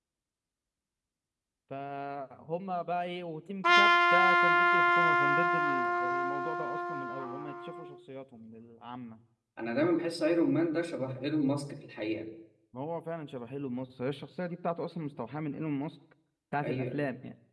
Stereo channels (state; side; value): identical; both; correlation 1.00